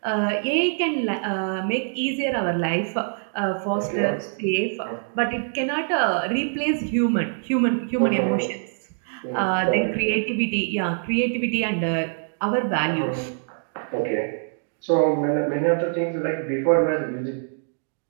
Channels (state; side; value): silent; left; 62 dB below the other